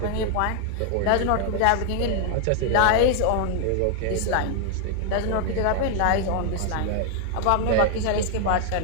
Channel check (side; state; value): both; different; correlation 0.00